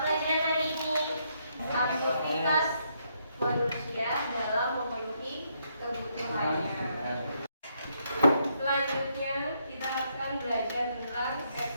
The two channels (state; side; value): inverted; both; correlation -0.75